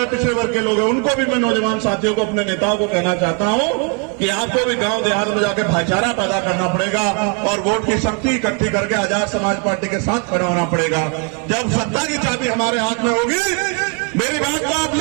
पिछड़े वर्ग के लोग हैं, उनको भी मैं नौजवान साथियों को, अपने नेताओं को कहना चाहता हूं कि आपको भी गांव देहात में जाकर भाईचारा पैदा करना पड़ेगा और वोट की शक्ति इकट्ठी करके आजाद समाज पार्टी के साथ खड़ा होना पड़ेगा। जब सत्ता की चाबी हमारे हाथ में होगी, मेरी बात को आप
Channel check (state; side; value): quieter; left; 37.3 dB